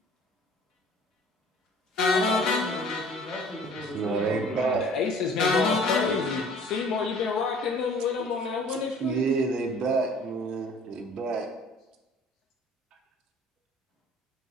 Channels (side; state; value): both; normal; correlation 0.51